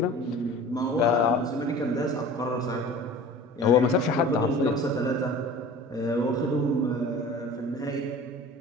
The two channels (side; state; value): both; normal; correlation 0.41